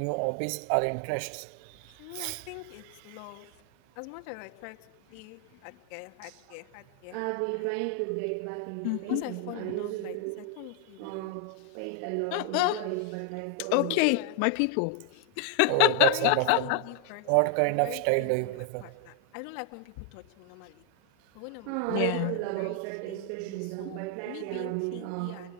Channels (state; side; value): different; both; correlation 0.00